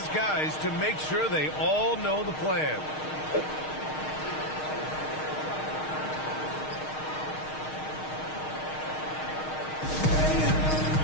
guys to make sure they all know the plan.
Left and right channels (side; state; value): right; late; 6.4 ms